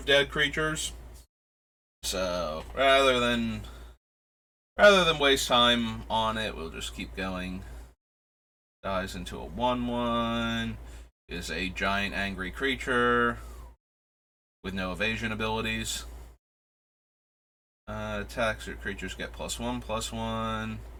dead creatures. So rather than waste time on it, we'll just keep going. Dies into a 1/1. Is a giant angry creature with no evasion abilities. Attacks your creatures get +1/+1.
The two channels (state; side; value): identical; both; correlation 1.00